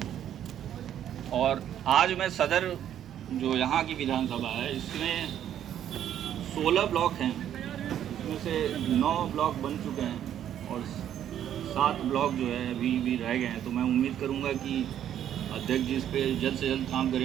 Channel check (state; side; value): quieter; left; 10.4 dB